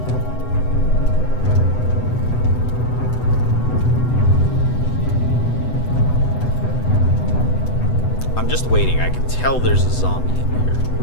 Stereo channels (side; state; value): right; late; 8.0 ms